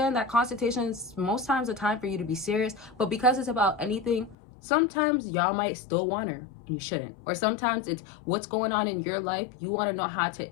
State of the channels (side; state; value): right; drops out; at 4.4 s